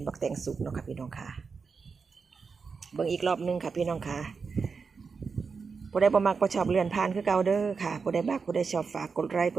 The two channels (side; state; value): left; quieter; 5.1 dB